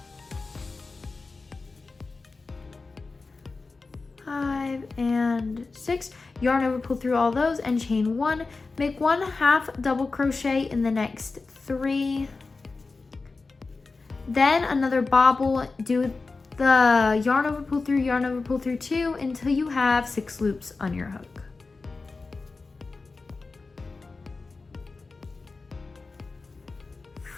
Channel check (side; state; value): right; quieter; 3.9 dB